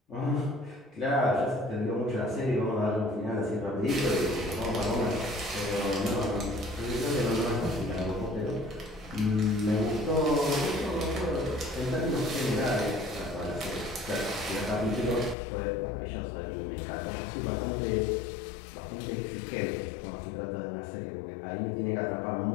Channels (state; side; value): drops out; right; at 15.4 s